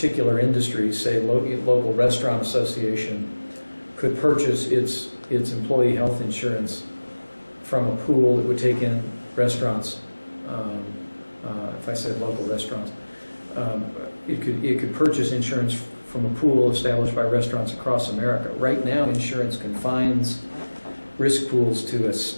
industries, say local restaurant association, could purchase its employee health insurance from a pool that would take in restaurants. If I said local restaurants, it could purchase insurance from a pool established by restaurants across America. Right now, insurance confines risk pools to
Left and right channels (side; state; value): both; inverted; correlation -1.00